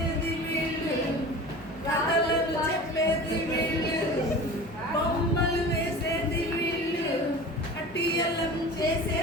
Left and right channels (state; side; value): normal; both; correlation 0.36